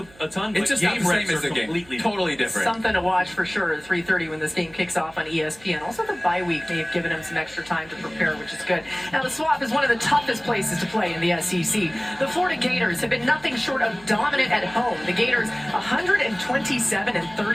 ton, but it's just game not the same reps as the are game. completely Totally different. Something to watch for sure at 3:30 when this game kicks off on ESPN. Also, the bye week may have given him some extra time to prepare, which is good. Now, the Swamp is one of the toughest places to play in the SEC. The Florida Gators have been nothing short of dominant at home. The Gators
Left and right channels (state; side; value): noise; right; hum, 25 dB below the sound